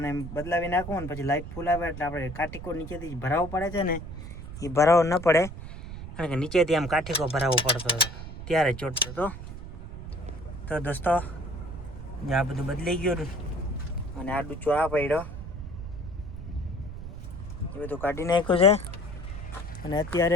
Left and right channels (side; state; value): right; noise; rumble, 10 dB below the sound